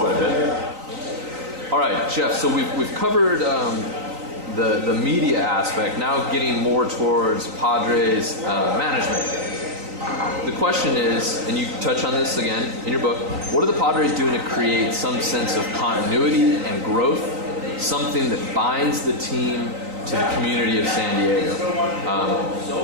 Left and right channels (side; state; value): left; late; 3.9 ms